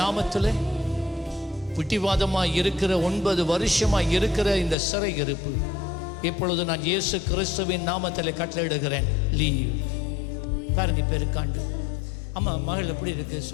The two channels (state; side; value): drops out; right; at 4.8 s